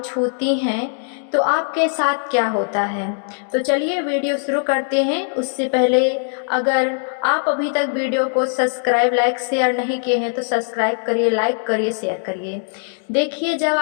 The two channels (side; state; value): right; silent; digital silence